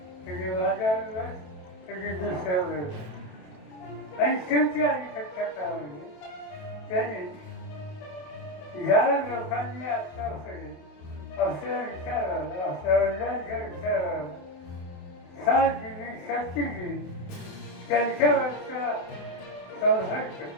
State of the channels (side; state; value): right; late; 28 ms